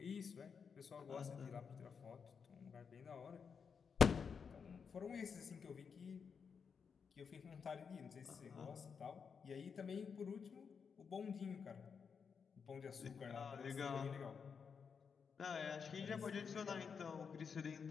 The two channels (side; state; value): right; quieter; 6.2 dB